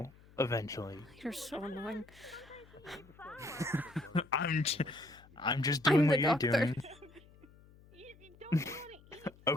eventually. You're so annoying. I'm just doing what the you're doctor. doing. You don't want to eat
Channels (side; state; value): left; noise; hum, 24 dB below the sound